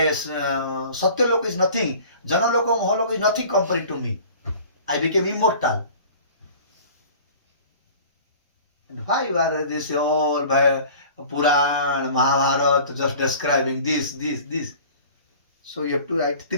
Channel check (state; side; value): inverted; both; correlation -0.45